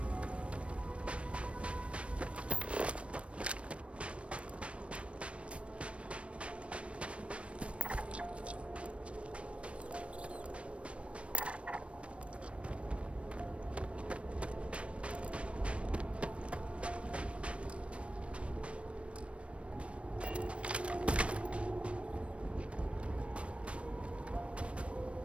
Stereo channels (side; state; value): left; late; 0.061 ms